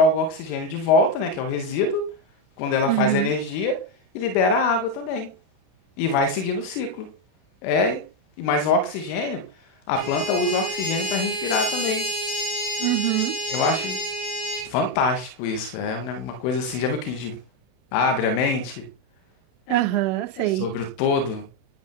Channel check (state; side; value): late; right; 32 ms